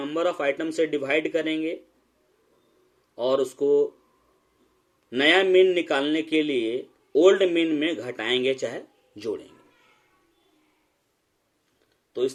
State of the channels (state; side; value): identical; both; correlation 1.00